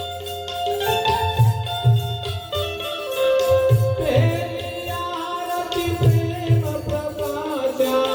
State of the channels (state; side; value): identical; both; correlation 1.00